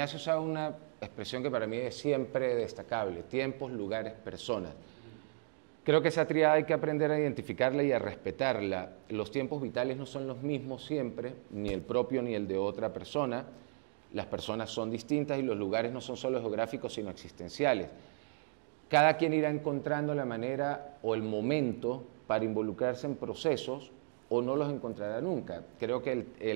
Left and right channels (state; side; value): silent; left; digital silence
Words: usa una expresión que para mí es siempre destacable: tiempos, lugares, personas. Creo que esa tríada hay que aprender a identificarla y a respetarla. Los tiempos vitales no son los mismos siempre, ni el propio ni el de otra persona. Las personas son distintas y los lugares no son solo geográficos, sino existenciales. Cada quien irá encontrando la manera o el momento para involucrarse en procesos o no los encontrará nunca. Creo que